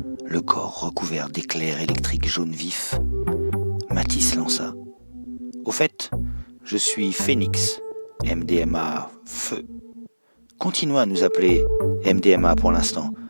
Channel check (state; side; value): inverted; both; correlation -1.00